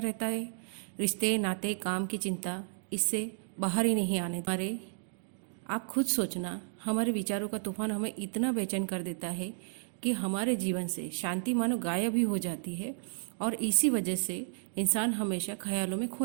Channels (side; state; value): left; silent; digital silence